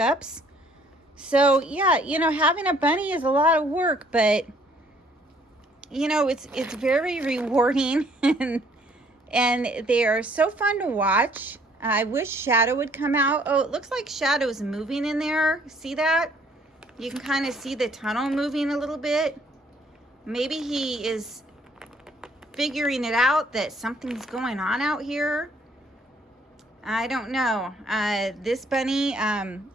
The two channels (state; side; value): normal; both; correlation 0.62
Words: So yeah, you know, having a bunny is a lot of work, but you know, it's very rewarding and they are so fun to watch. I wish Shadow would come out. Oh, it looks like Shadow's moving in there. See that? You can kind of see the tunnel moving a little bit. Maybe he is figuring it out that something's going on out here. I don't know. This bunny